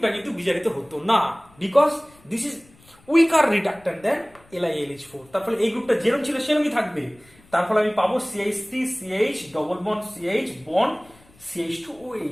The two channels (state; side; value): noise; left; rumble, 28 dB below the sound